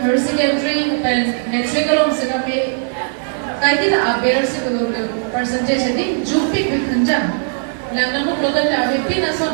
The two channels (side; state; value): left; silent; digital silence